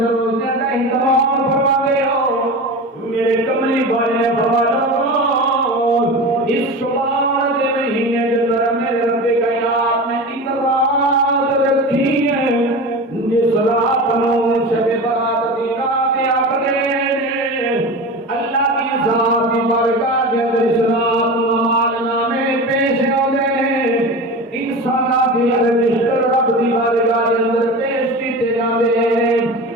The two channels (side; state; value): both; normal; correlation 0.29